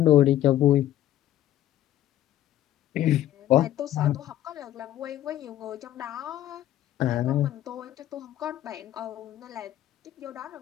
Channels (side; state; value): right; quieter; 12.8 dB